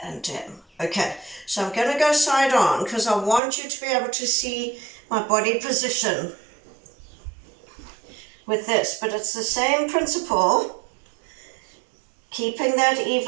and down. Okay, so I'm going to go side on because I want you to be able to see my body position with this, but it's the same principle, keeping that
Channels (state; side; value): drops out; left; at 3.4 s